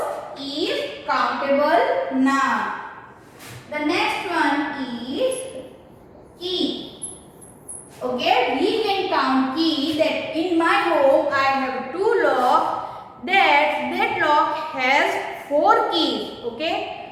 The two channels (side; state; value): both; identical; correlation 1.00